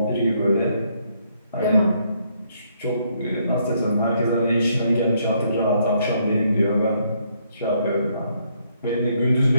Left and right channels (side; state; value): both; inverted; correlation -0.72